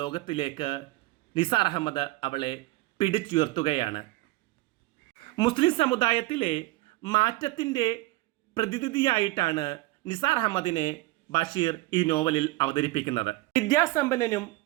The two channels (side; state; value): left; quieter; 19.4 dB